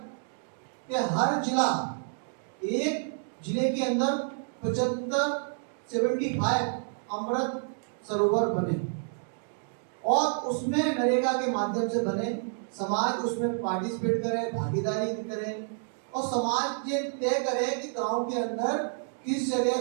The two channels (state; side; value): silent; left; digital silence